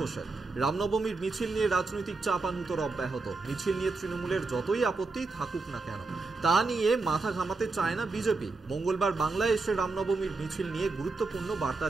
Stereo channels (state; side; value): quieter; left; 3.7 dB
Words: রামনবমীর মিছিল নিয়ে রাজনৈতিক চাপানুতর অব্যাহত। মিছিল নিয়ে তৃণমূলের যতই আপত্তি থাকুক না কেন, তা নিয়ে মাথা ঘামাতে চায় না বিজেপি। মঙ্গলবার বাংলায় এসে রামনবমীর মিছিল নিয়ে গুরুত্বপূর্ণ বার্তা